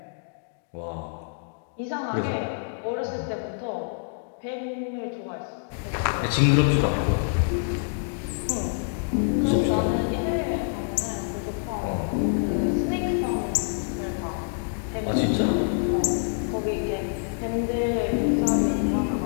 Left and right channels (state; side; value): silent; right; digital silence